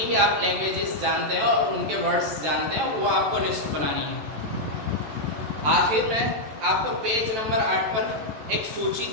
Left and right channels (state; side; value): late; left; 14 ms